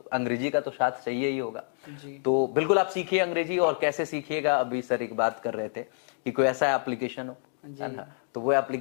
का तो साथ चाहिए ही होगा। तो बिल्कुल आप सीखिए अंग्रेजी। और कैसे सीखिएगा, अभी सर एक बात कर रहे थे कि कोई ऐसा एप्लीकेशन हो, तो वो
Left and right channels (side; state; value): right; silent; digital silence